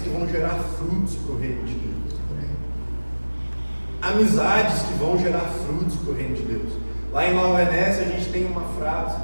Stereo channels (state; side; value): inverted; both; correlation -1.00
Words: que vão gerar frutos para o reino de Deus. Amizades que vão gerar frutos para o reino de Deus. Lá em Nova Venécia a gente tem uma frase